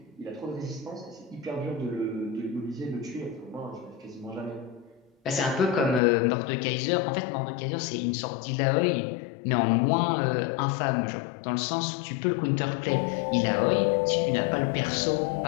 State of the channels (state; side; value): drops out; right; at 6.0 s